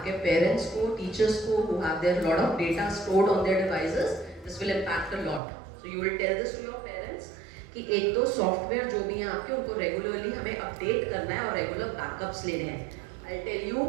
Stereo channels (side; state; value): left; drops out; at 5.4 s